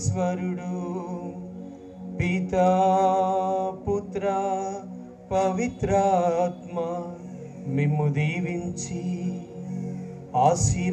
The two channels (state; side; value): identical; both; correlation 1.00